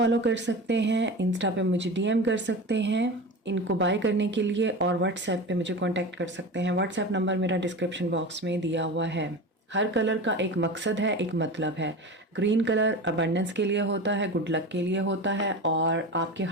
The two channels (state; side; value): normal; both; correlation 0.29